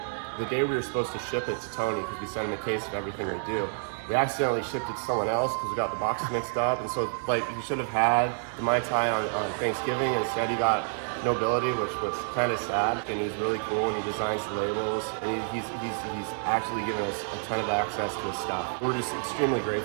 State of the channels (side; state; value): left; silent; digital silence